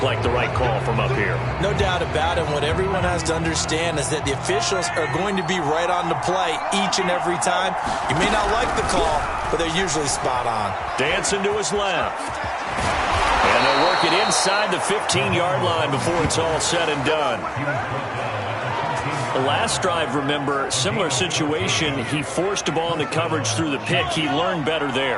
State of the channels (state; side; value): identical; both; correlation 1.00